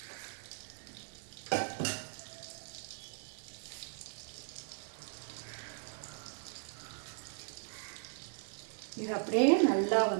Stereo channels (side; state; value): left; silent; 52 dB below the other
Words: இது அப்படியே நல்லா